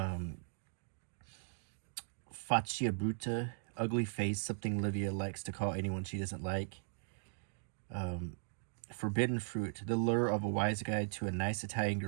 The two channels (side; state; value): left; silent; digital silence